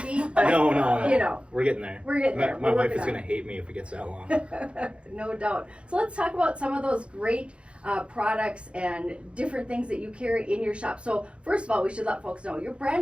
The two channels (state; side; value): late; left; 0.059 ms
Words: But, No. You know, We're getting there. we're getting there. My We're wife is working gonna hate me if it gets that long. on it. No doubt. So let's talk about some of those great products and different things that you carry in your shop. So first of all, we should let folks know your